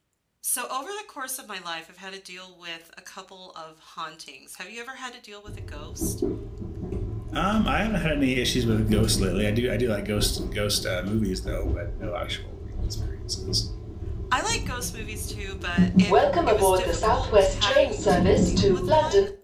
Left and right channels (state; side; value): identical; both; correlation 1.00